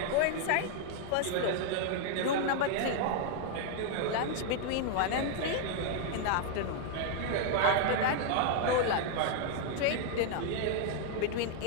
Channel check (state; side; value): different; both; correlation 0.00